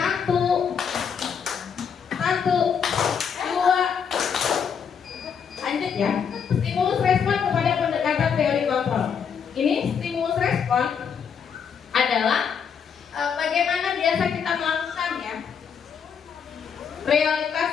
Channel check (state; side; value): quieter; right; 7.0 dB